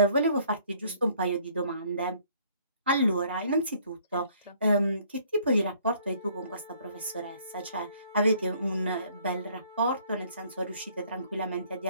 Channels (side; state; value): both; inverted; correlation -0.60